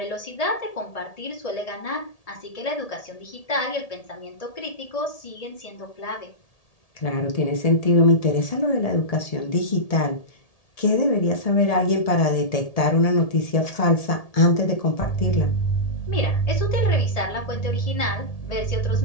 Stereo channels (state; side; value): late; right; 1.8 ms